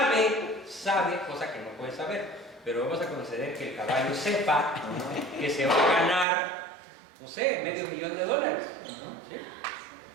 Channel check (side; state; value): left; drops out; at 6.2 s